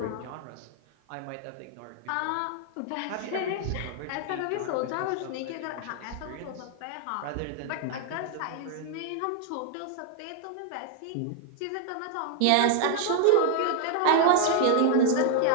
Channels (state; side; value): different; both; correlation 0.00